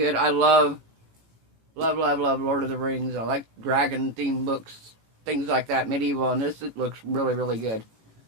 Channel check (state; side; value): late; left; 18 ms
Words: I love Lord of the Rings. I like dragon-themed books, things like that, medieval, and this it looks really, really good.